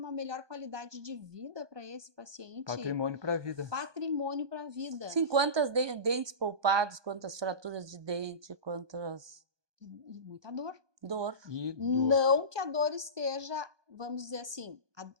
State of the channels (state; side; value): late; left; 1.2 ms